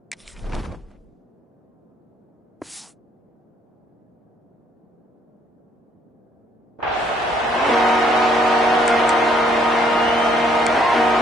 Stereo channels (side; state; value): both; normal; correlation 0.65